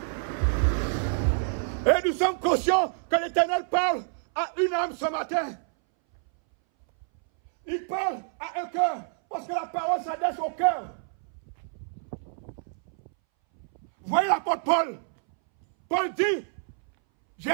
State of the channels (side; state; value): left; silent; 60 dB below the other